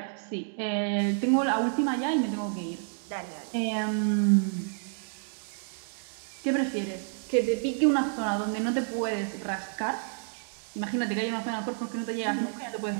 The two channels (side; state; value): left; silent; 58 dB below the other